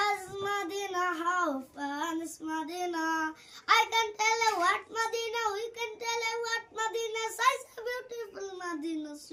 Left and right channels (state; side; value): identical; both; correlation 1.00